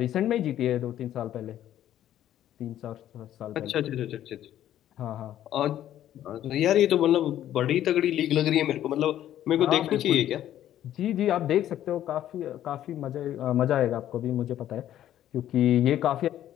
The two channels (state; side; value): quieter; right; 11.9 dB